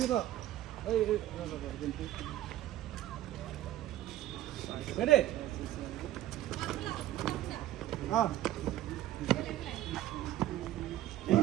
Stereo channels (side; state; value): left; quieter; 13.9 dB